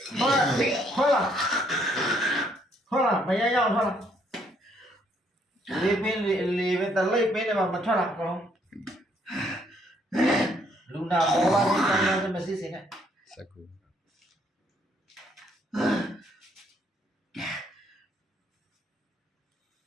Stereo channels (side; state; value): both; normal; correlation 0.68